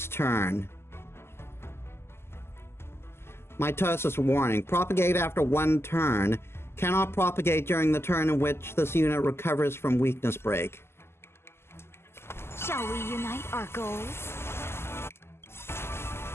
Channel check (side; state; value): right; late; 0.12 ms